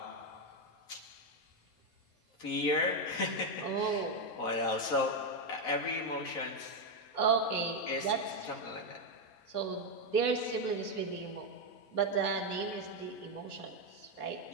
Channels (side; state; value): right; late; 4.1 ms